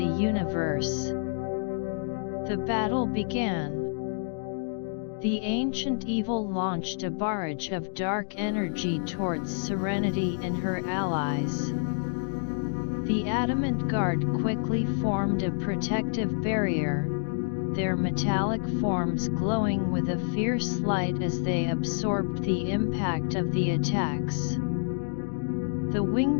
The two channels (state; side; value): silent; right; digital silence